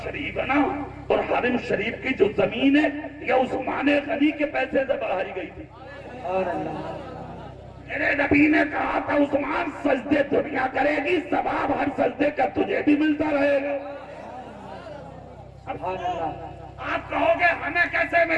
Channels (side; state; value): both; identical; correlation 1.00